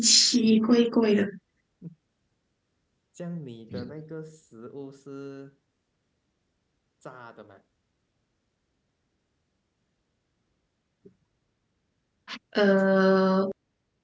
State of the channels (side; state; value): both; identical; correlation 1.00